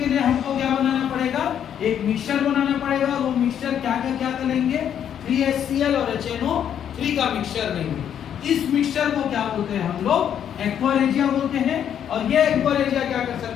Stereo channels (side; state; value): right; quieter; 9.2 dB